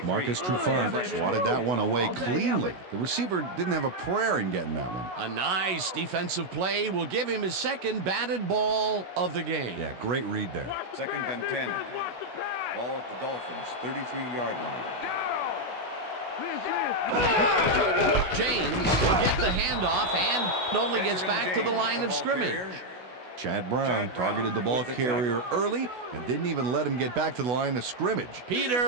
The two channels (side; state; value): left; late; 16 ms